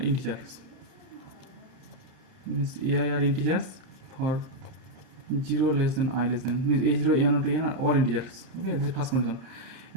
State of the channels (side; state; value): left; late; 31 ms